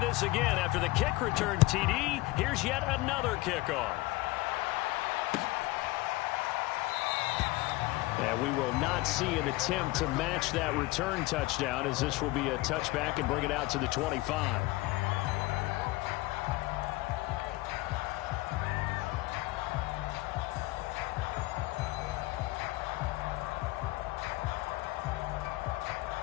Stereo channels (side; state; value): right; quieter; 20.2 dB